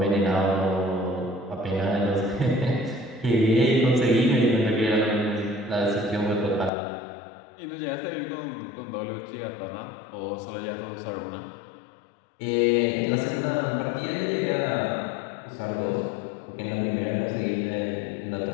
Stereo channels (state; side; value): drops out; right; at 6.7 s